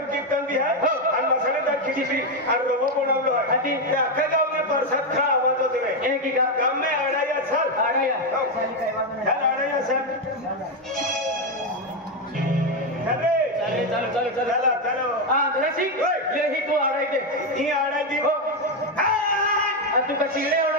कीर्तन भी आहे आणि मसालेदार खिचडी आणि रवा बनवलो आहे त्या अख्ख्या गावने प्रसाद खा आवाज होते रे की गाव में आडाया सर आडाया आडाया सर अरे चलो चलो चलो चलो चलो हां दरसी ले ही तू आडाय दे ही आडाय दे हो तू का चिडे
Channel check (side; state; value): both; normal; correlation 0.06